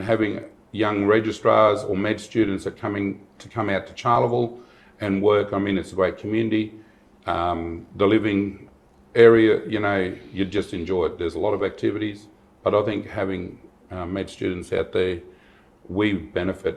having young registrars or med students that come out to Charleville and work. I mean, it's a great community. The living area, you know, you just enjoy it. There's a lot of activities, but I think having med students out there, we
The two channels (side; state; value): both; identical; correlation 1.00